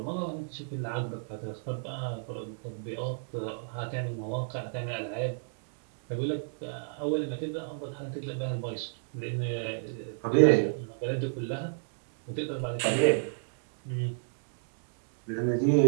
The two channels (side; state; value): left; silent; digital silence